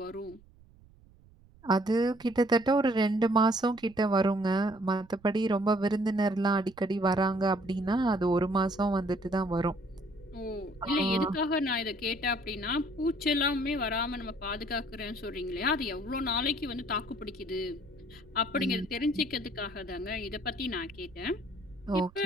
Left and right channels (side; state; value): right; noise; rumble, 25 dB below the sound